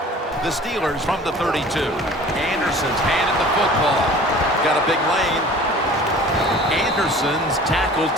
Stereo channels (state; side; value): normal; both; correlation 0.45